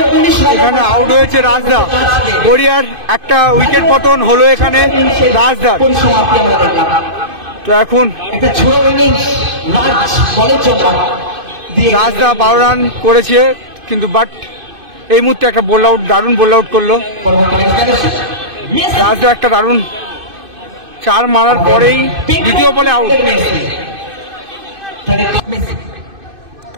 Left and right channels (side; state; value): left; late; 2.5 ms